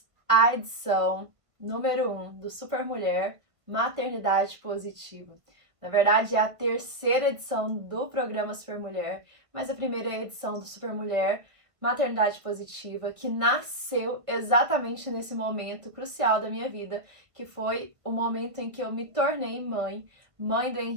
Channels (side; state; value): left; late; 1.5 ms